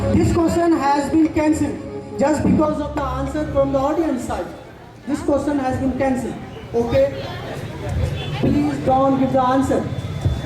This question has been cancelled just because of the answer from the audience side. This question has been cancelled. Okay? Please don't give the answer.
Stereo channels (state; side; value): identical; both; correlation 1.00